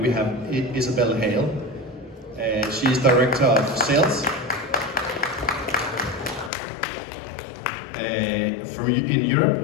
We have Isabel Hale. She is Director of Sales in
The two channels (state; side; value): drops out; right; at 6.5 s